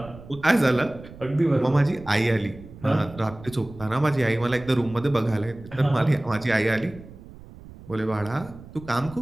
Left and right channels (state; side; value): noise; right; rumble, 17 dB below the sound